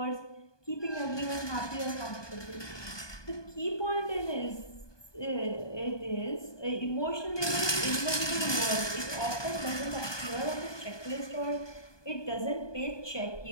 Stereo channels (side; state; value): right; late; 1.2 ms